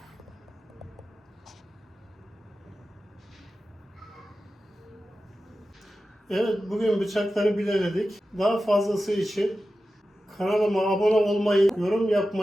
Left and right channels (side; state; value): both; normal; correlation 0.93